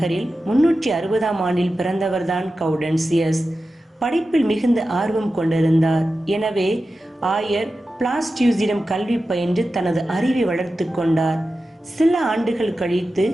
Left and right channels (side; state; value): both; normal; correlation 0.93